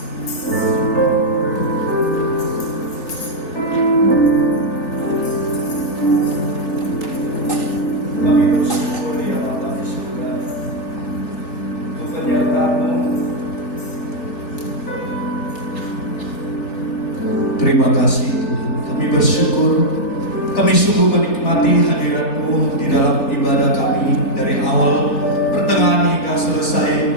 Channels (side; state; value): right; late; 3.4 ms